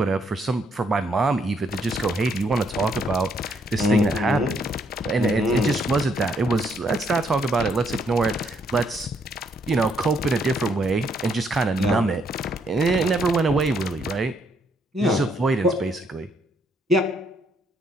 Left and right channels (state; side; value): normal; both; correlation 0.71